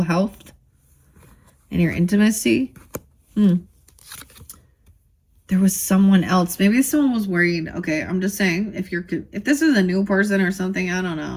health, and your intimacy. There was someone else. Maybe someone was worried. Okay, I'm just saying, if this is a new person or something, I don't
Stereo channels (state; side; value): identical; both; correlation 1.00